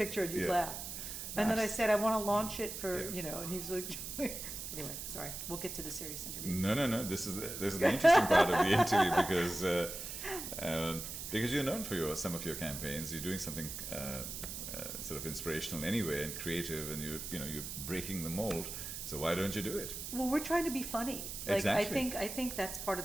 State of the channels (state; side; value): noise; right; hiss, 7 dB below the sound